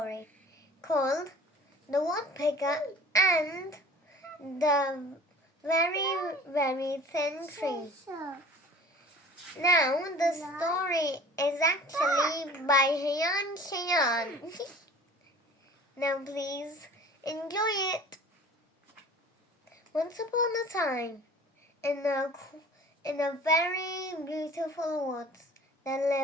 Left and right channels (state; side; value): normal; both; correlation 0.45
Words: called The Woodpecker and the Very Thin Tree. Now, the story is actually by Hiyansh. Now, please enjoy it. Once upon a time, in a very beautiful woods, there